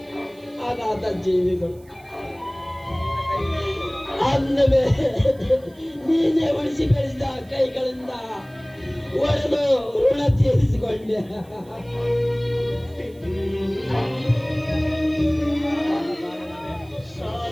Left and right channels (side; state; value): right; noise; hiss, 29 dB below the sound